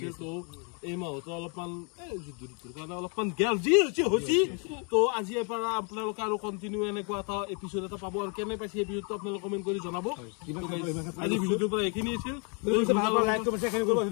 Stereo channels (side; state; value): right; quieter; 36.1 dB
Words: তো এই মাহতো অলপমান যুদ্ধৰ কাৰণে অলপমান গেল যি হৈছে তো আজি পৰা আপোনালোকে আৰু কন্টিনিউ এনেকুৱা এটা এপিসোড এটা পাব আৰু কেনে পাইছে এপিসোডটো আপোনালোকে কমেন্ট কৰি জনাব আজি ভিডিওটোৰ পৰা এইখিনি আছিল লাইক কৰিব শেয়াৰ কৰিব